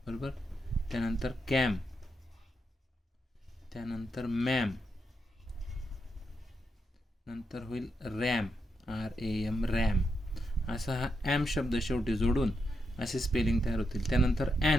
बरोबर. त्यानंतर कॅम, त्यानंतर मॅम, नंतर होईल रॅम, RAM, रॅम. असा हा ॲम शब्द शेवटी जोडून असे स्पेलिंग तयार होतील. त्यानंतर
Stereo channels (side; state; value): both; normal; correlation 0.83